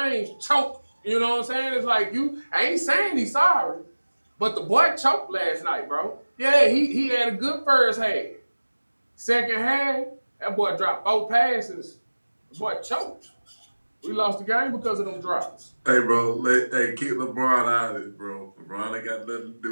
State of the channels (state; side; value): inverted; both; correlation -1.00